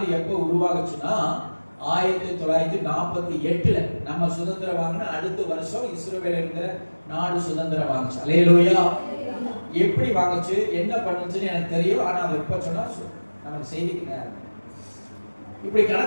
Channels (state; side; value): inverted; both; correlation -1.00